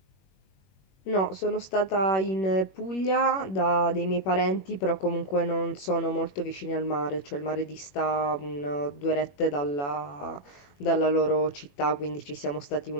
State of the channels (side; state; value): right; late; 21 ms